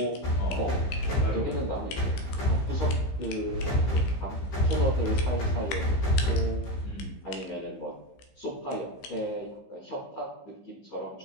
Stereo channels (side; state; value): right; late; 15 ms